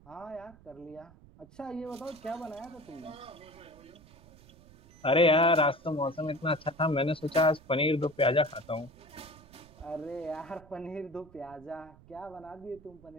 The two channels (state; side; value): noise; right; rumble, 23 dB below the sound